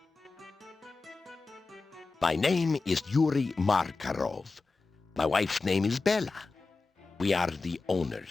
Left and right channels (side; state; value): right; quieter; 3.9 dB